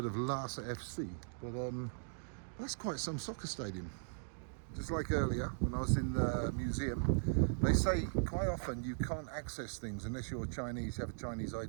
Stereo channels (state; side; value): silent; left; digital silence